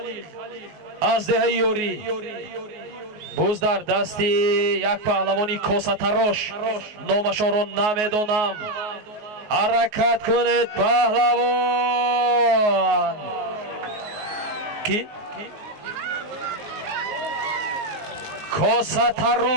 از دهه یوری بزدر دستی یک پهلوانی کاسه تراش نامشان را نمیدانم. حرکت کنید پهلوان. کی؟ کاسه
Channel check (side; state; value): left; late; 19 ms